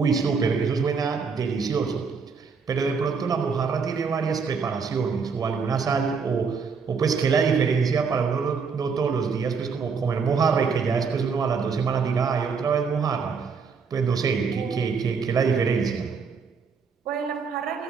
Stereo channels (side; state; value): left; quieter; 5.5 dB